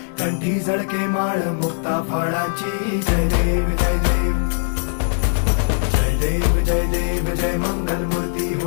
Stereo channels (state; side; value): silent; right; 58 dB below the other